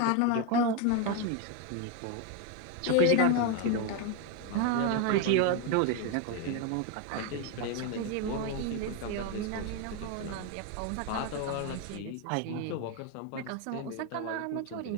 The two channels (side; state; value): both; different; correlation 0.02